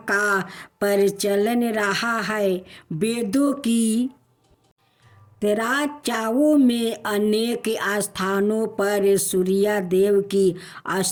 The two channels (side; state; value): both; identical; correlation 1.00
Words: का प्रचलन रहा है। वेदों की चर्चाओं में अनेक स्थानों पर सूर्य देव की